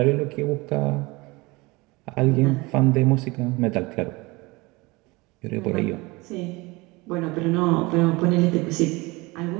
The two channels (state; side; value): quieter; left; 23.8 dB